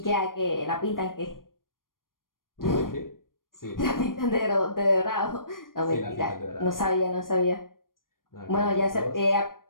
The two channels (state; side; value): late; right; 0.91 ms